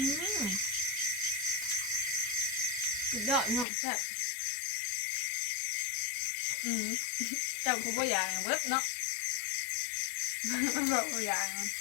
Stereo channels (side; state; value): right; drops out; at 3.7 s